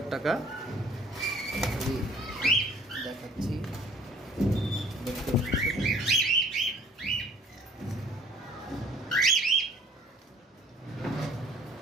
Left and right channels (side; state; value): both; normal; correlation 0.53